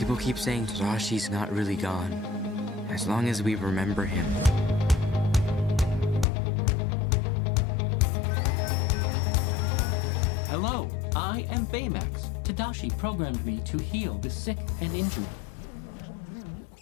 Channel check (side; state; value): right; drops out; at 6.2 s